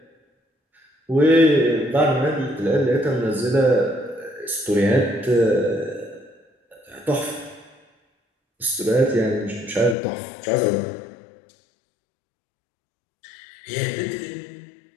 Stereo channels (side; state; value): right; drops out; at 10.0 s